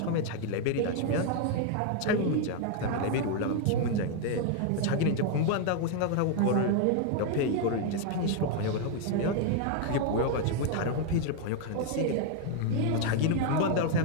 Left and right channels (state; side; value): different; both; correlation 0.00